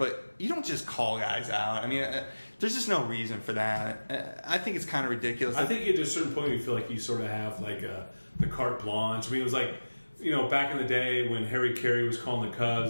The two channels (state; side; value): inverted; both; correlation -1.00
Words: you don't just call guys out. I mean, there's just no reason for that. I think it's kind of ridiculous. I think at a certain point you feel like you sort of have like the carte blanche. I mean, it was like, you know, back in the day when Harry Carey was calling the Cubs.